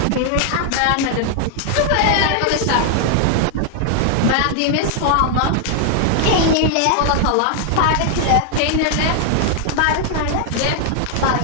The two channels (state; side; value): different; both; correlation 0.00